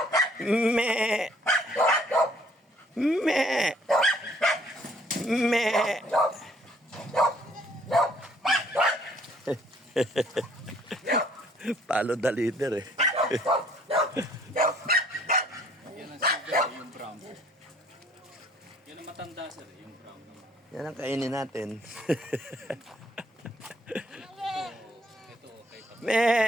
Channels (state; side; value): normal; both; correlation 0.61